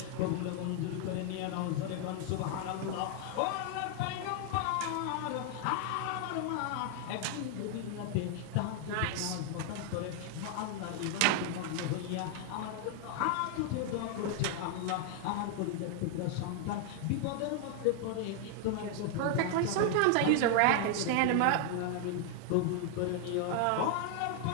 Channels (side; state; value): both; different; correlation 0.00